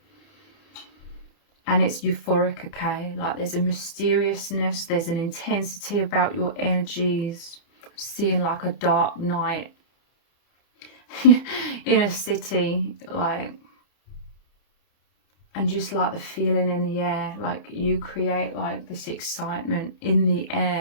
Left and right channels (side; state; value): right; late; 30 ms